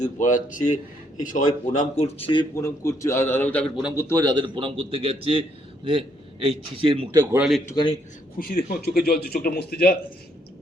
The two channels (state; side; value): normal; both; correlation 0.71